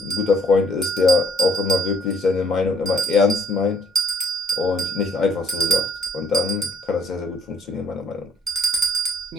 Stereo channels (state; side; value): normal; both; correlation 0.61